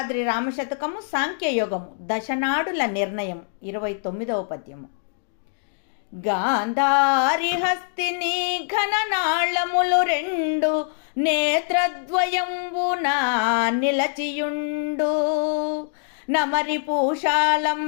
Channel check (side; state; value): right; silent; digital silence